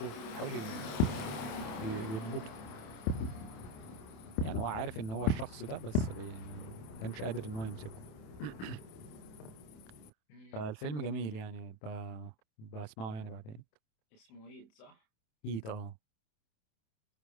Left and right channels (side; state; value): right; late; 28 ms